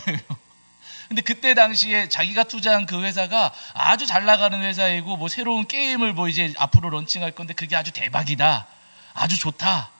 근데 그때 당시에 자기가 투자한 그 회사가 아주 잘 나가는 회사이고, 뭐 새로운 게임을 뭐 이제 앞으로 런칭할 건데 그게 아주 대박이다, 아주 좋다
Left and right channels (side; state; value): both; inverted; correlation -1.00